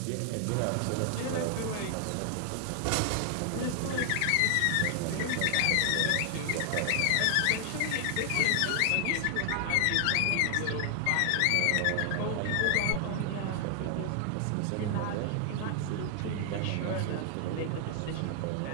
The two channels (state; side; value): different; both; correlation 0.00